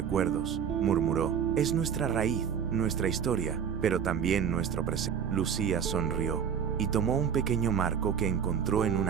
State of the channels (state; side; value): quieter; left; 7.8 dB